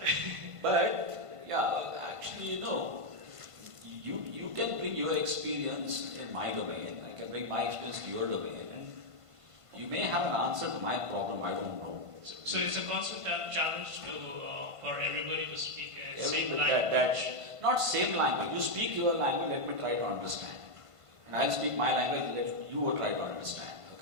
But yeah, actually, you can bring your experience in my domain. I can bring my experience to your domain, and you may have an answer to my problem. I don't know. so it's a constant challenge to for everybody to speak a same That- language. not same language. You speak your language. Let me try to understand. And I'll speak my language. Let you try to understand.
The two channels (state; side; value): late; left; 1.5 ms